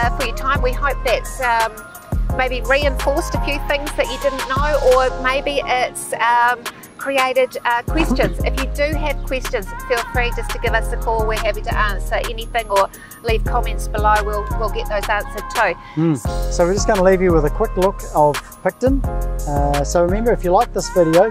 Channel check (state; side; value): identical; both; correlation 1.00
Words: for your time. We hope that's maybe reinforced a few things that you didn't know, or maybe it's created questions. If you do have questions, feel free just to give us a call. We're happy to answer anything, or leave comments below. We'll get those answered too. So we're just going to leave you with a quick look of Picton. So remember, if you like this video,